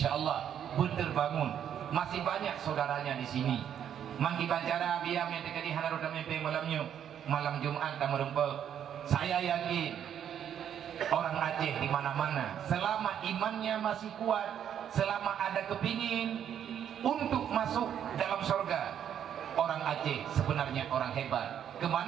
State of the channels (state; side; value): quieter; left; 9.3 dB